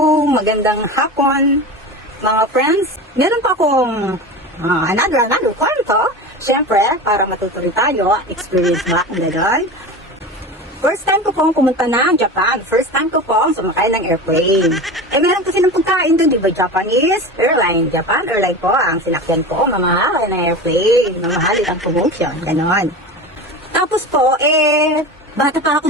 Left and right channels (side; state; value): both; normal; correlation 0.29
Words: Magandang hapon, mga friends. Meron pa akong another kwento. Siyempre, para matutuloy tayo, experience ba ang gano'n? First time ko pong pumunta ng Japan. First time ko pong sumakay ng airplane. Meron kasi ng pagkain doon, di ba? Japanese airline. Japan airline po ang sinakyan ko. Mamahalin ng airplane. Mamahalin ang promotion. Gano'n. Tapos po, bata pa ako